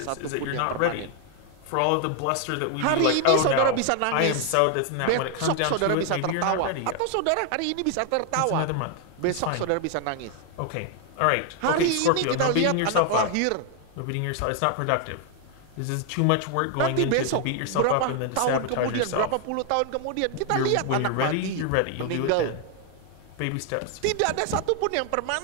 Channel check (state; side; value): different; both; correlation 0.00